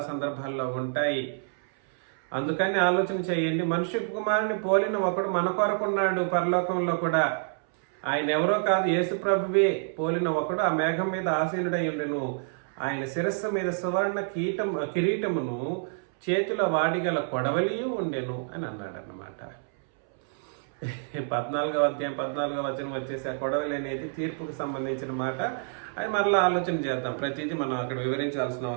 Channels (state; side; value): silent; left; 59 dB below the other